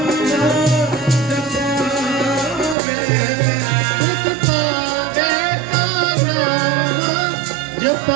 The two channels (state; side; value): drops out; left; at 2.8 s